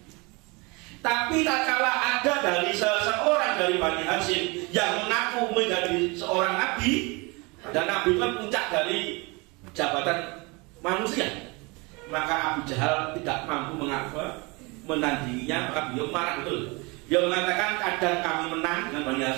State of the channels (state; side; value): quieter; left; 27.2 dB